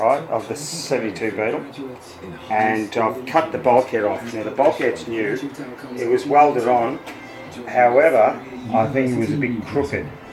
of the 72 Beetle. And I've cut the bulkhead off. Now the bulkhead's new. It was welded on. However, I think it was a bit crooked.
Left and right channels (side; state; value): both; identical; correlation 1.00